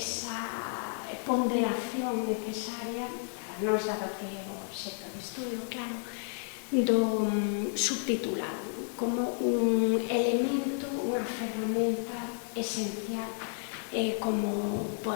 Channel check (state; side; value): silent; right; 57 dB below the other